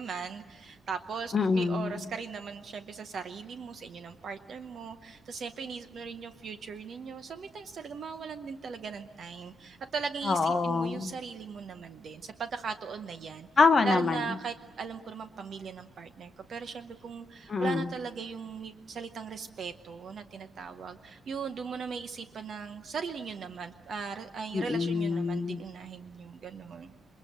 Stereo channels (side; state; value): both; normal; correlation 0.81